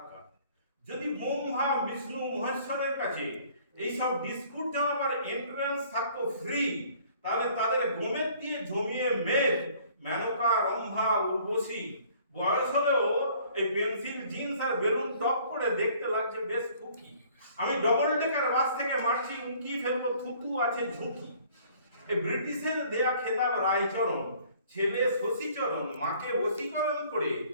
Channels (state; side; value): inverted; both; correlation -0.56